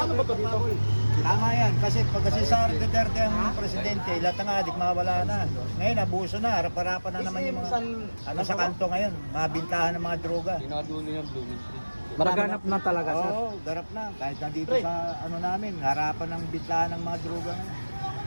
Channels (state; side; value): inverted; both; correlation -1.00